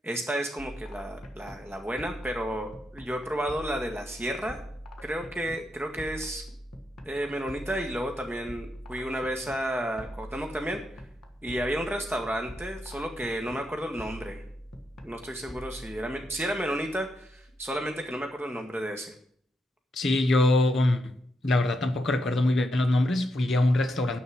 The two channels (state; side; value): normal; both; correlation 0.82